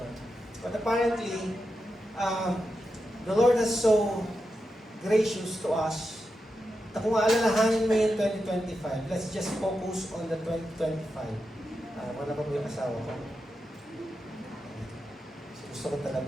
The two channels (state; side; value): normal; both; correlation 0.88